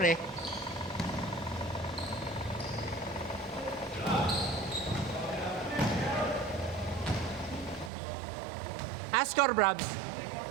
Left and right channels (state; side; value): drops out; left; at 7.9 s